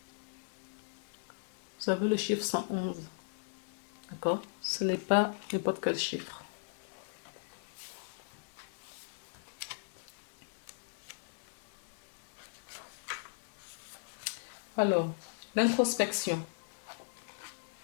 Vous avez le chiffre 111. D'accord? Ce n'est pas n'importe quel chiffre. Alors, l'introspection.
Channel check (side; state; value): right; silent; digital silence